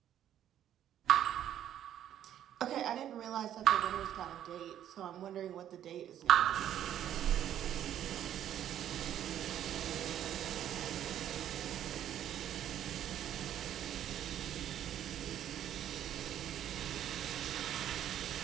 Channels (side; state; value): left; quieter; 10.8 dB